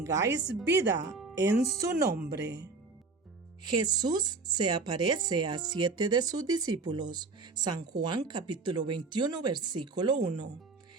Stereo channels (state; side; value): quieter; left; 4.1 dB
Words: vida en su nombre. Jesús se aparece a 7 de sus discípulos. San Juan capítulo 21, versículo 1.